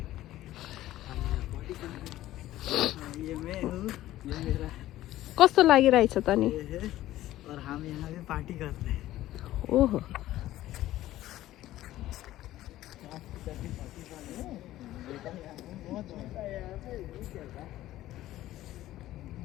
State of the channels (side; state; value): right; quieter; 14.8 dB